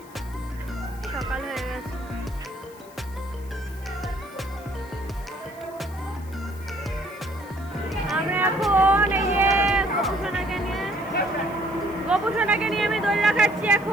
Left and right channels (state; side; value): noise; left; hiss, 24 dB below the sound